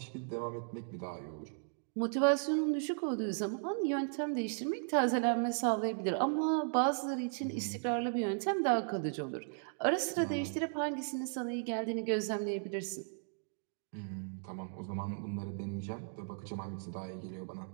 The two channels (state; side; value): silent; left; digital silence